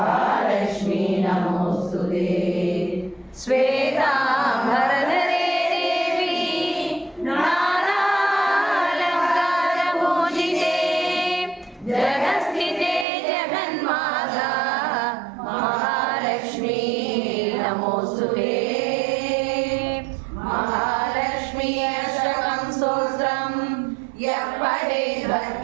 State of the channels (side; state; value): left; drops out; at 13.1 s